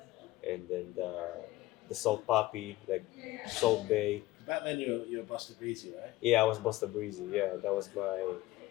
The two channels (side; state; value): right; quieter; 17.3 dB